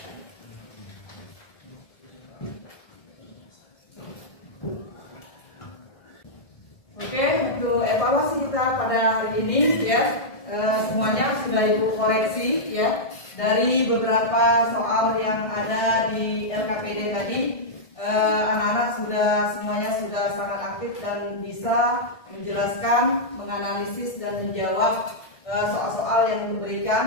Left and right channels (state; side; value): late; right; 1.7 ms